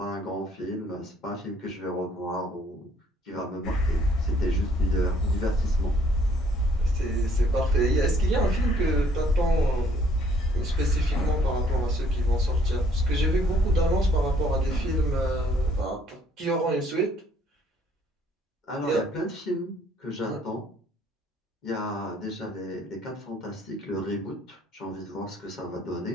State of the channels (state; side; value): normal; both; correlation 0.63